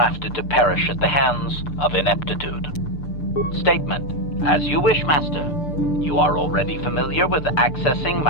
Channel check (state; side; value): late; right; 6.8 ms